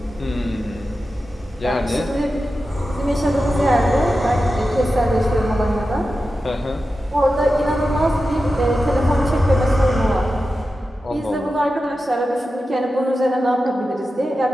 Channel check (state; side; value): normal; both; correlation 0.92